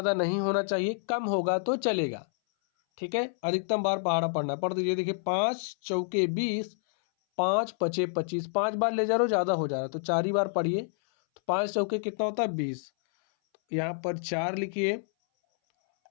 नहीं होना चाहिए, कम होगा तो चलेगा, ठीक है। अधिकतम बार पहाड़ा पढ़ना है। पढ़ दीजिए, देखिए 5 चौके 20, 5 पचे 25। 5 बार ले जा रहे हो, ज़्यादा हो जा रहा है तो 4 ही बार पढ़िए। तो 5 चौके कितना होता है, 20। यहाँ पर 4 लिखिए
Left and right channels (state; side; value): silent; right; 59 dB below the other